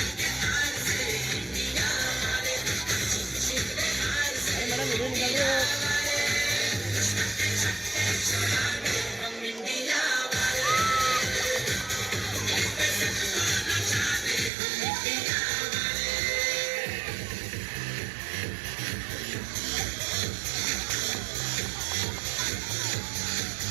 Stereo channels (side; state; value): left; drops out; at 14.5 s